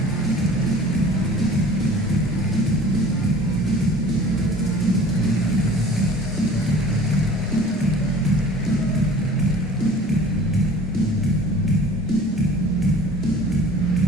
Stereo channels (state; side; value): normal; both; correlation 0.46